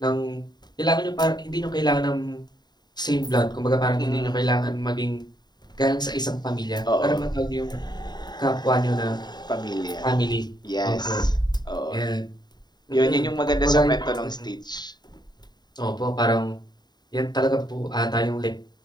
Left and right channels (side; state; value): right; late; 0.20 ms